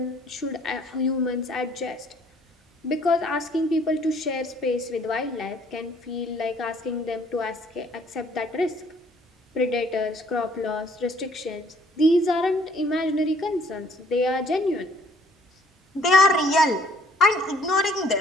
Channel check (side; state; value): both; normal; correlation 0.61